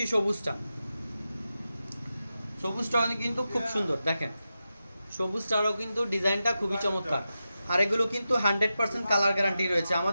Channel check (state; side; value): inverted; both; correlation -0.91